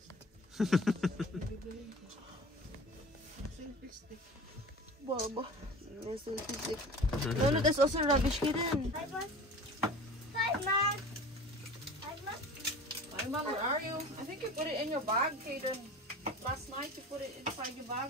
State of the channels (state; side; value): normal; both; correlation 0.39